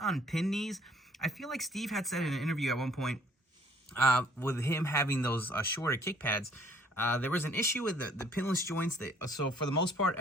pin knees. I feel like Steve had said in an interview at one point with him having those shorter kick pads, there was an issue with the pinless joints. So for the most part,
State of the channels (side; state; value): both; normal; correlation 0.60